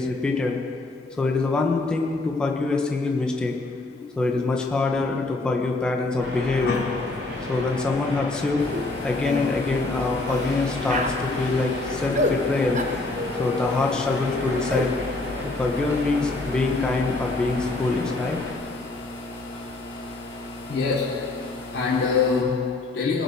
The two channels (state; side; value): quieter; right; 3.1 dB